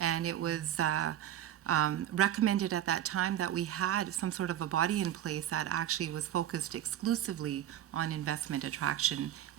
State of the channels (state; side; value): quieter; left; 11.4 dB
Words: and it was recommended at that time that we had some sort of a body in place that actually was focused exclusively on investment attraction,